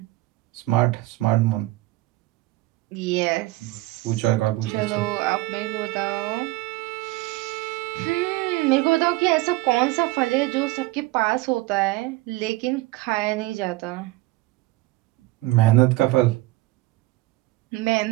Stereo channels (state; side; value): quieter; left; 19.4 dB